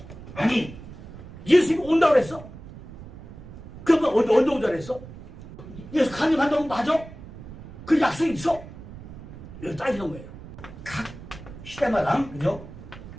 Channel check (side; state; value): right; noise; rumble, 15 dB below the sound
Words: 아니 예수님이 온다고 그랬어? 그러면 언제 온다고 그랬어? 예수 강림한다고 맞아? 그 약속이 있어? 이거 따지는 거예요. 각 시대마다, 그죠?